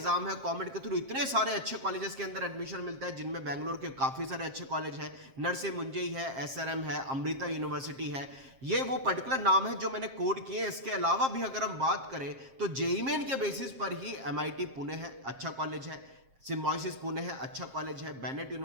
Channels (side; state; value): left; late; 7.5 ms